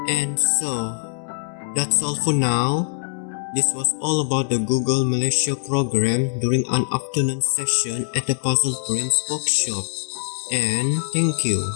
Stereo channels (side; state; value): right; silent; 64 dB below the other